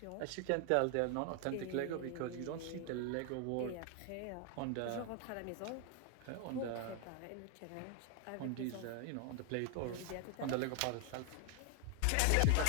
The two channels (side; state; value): both; different; correlation 0.00